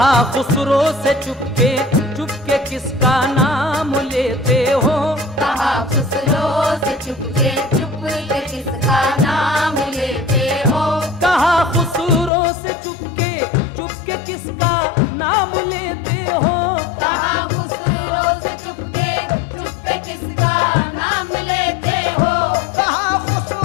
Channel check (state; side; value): drops out; right; at 12.3 s